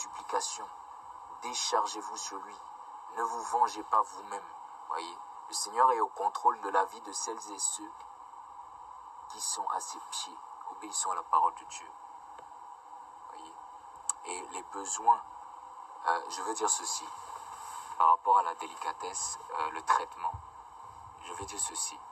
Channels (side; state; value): both; identical; correlation 1.00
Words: Déchargez-vous sur lui. Ne vous vengez pas vous-même. Voyez, le Seigneur est au contrôle de la vie de celles et ceux qui sont à ses pieds, obéissant à la parole de Dieu. Voyez, et les besoins, je veux dire ceci, par rapport à la délicatesse, le traitement. Je veux dire ceci.